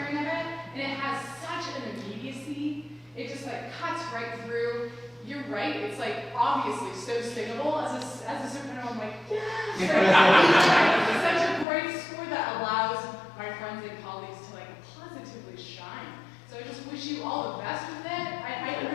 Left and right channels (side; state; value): right; drops out; at 11.7 s